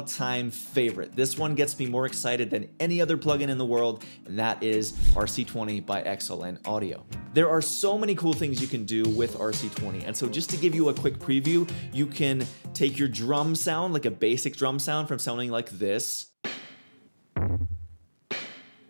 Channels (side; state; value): both; inverted; correlation -1.00